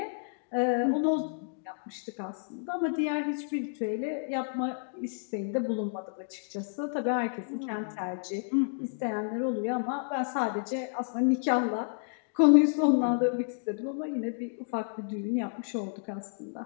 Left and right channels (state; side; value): silent; right; digital silence